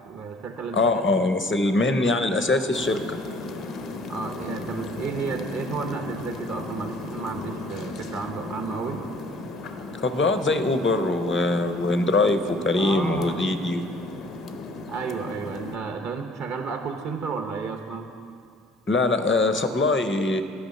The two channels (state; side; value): normal; both; correlation 0.54